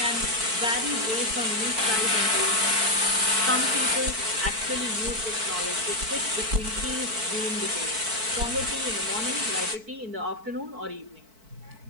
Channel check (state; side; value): late; left; 4.5 ms